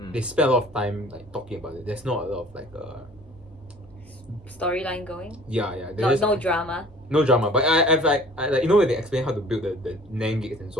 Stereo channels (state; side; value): normal; both; correlation 0.49